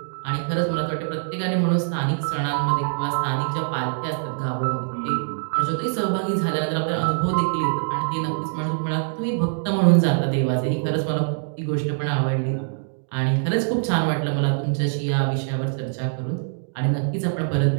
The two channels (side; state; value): left; silent; digital silence